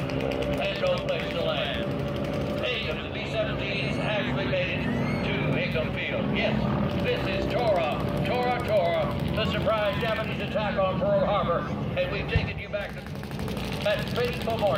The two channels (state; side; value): identical; both; correlation 1.00